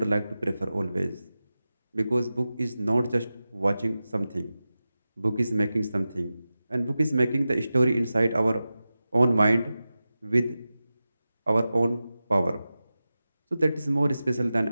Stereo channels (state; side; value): inverted; both; correlation -0.94